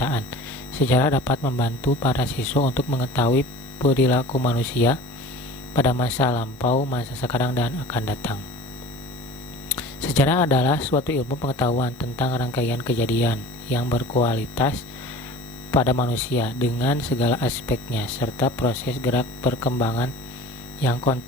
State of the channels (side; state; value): both; normal; correlation 0.41